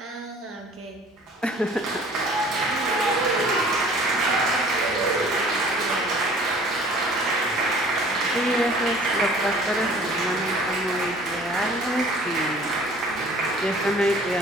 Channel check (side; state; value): both; normal; correlation 0.50